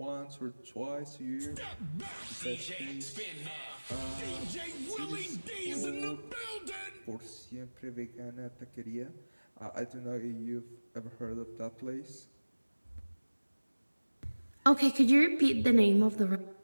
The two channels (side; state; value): both; inverted; correlation -1.00